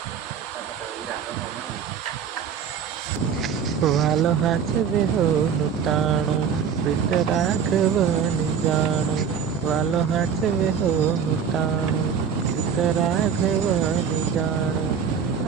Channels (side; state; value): left; quieter; 7.1 dB